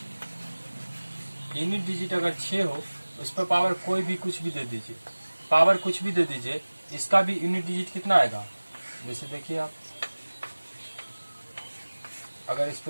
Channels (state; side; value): inverted; both; correlation -1.00